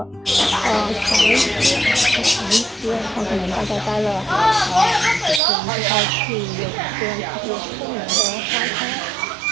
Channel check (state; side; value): drops out; left; at 5.4 s